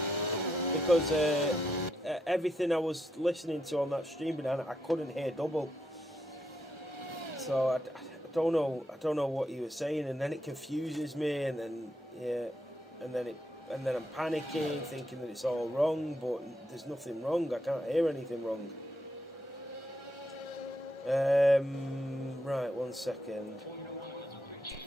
Because everything I was listening to on that stream, Banana, I couldn't hear double. So, I don't know what you were saying, and then it confuses me, and then, yeah, and then I'm panicking, thinking that it's all wrong, but there's nothing wrong. I can't hear anything wrong. Right, 1 second.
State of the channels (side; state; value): both; normal; correlation 0.81